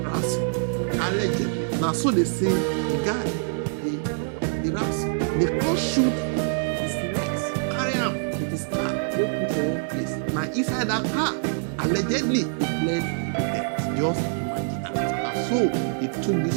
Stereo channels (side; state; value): left; silent; 56 dB below the other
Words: ransom. Allegedly. Now so they say the guy, the ransom. They come shoot his legs, carry him with his car, go put for one place. Now inside that car, allegedly he bled to death. Just imagine that. And so he took